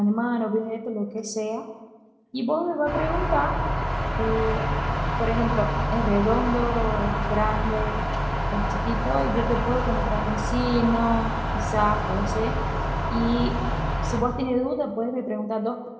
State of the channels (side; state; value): both; identical; correlation 1.00